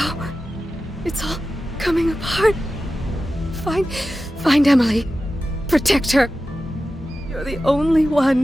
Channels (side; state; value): both; normal; correlation 0.93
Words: it's all coming apart. Find Emily. Protect her. You're the only